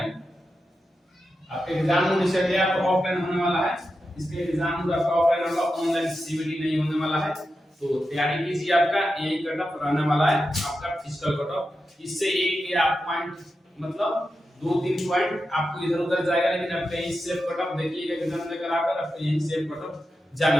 आपका एग्जाम मोड इसका क्या तो ऑफलाइन होने वाला है। इसके एग्जाम मोड आपका ऑफलाइन होगा, ऑनलाइन सीवीडी नहीं होने वाला है। तो तैयारी कीजिए, आपका यही कट ऑफ रहने वाला है आपका फिजिकल कट ऑफ। इससे एक या पॉइंट मतलब 2-3 पॉइंट आपको इधर उधर जाएगा, लेकिन आपका यही सेफ कट ऑफ देखिएगा एग्जाम लेकर आकर आपका यही सेफ कट ऑफ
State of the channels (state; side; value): normal; both; correlation 0.89